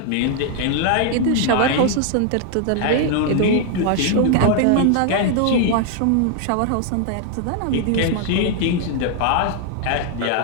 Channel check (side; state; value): both; different; correlation 0.00